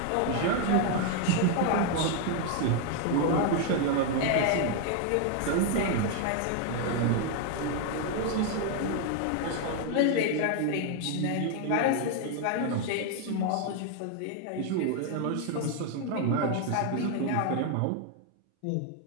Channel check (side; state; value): both; different; correlation 0.00